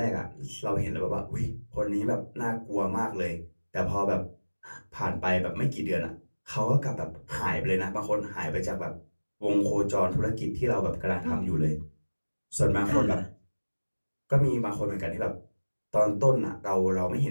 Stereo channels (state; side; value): inverted; both; correlation -1.00